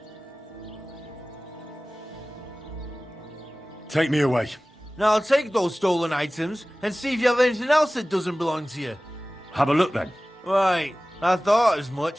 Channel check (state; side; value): normal; both; correlation 0.97